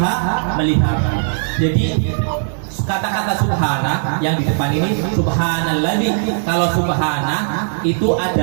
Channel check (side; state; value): left; silent; digital silence